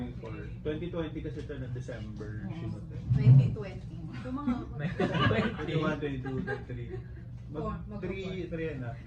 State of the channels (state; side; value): identical; both; correlation 1.00